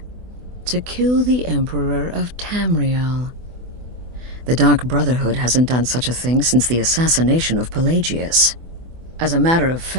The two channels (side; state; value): left; late; 24 ms